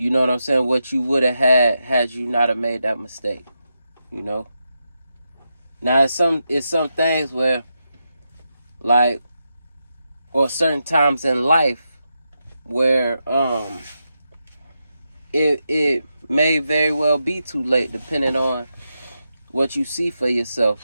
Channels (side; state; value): both; inverted; correlation -0.86